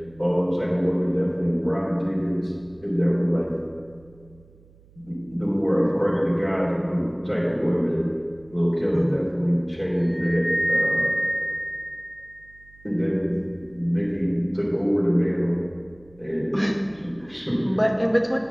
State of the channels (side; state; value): right; noise; hum, 27 dB below the sound